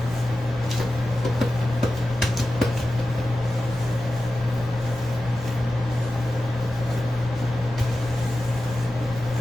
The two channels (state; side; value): normal; both; correlation 0.93